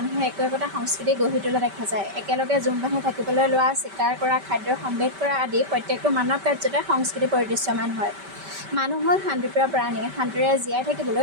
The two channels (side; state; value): left; late; 5.1 ms